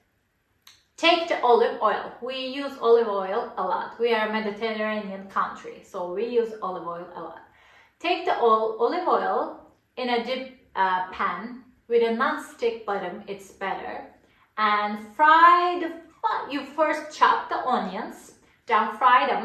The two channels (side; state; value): both; identical; correlation 1.00